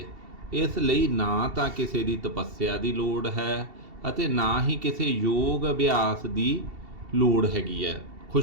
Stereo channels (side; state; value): left; late; 2.7 ms